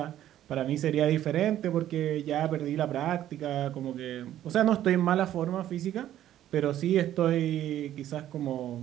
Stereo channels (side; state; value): left; quieter; 12.2 dB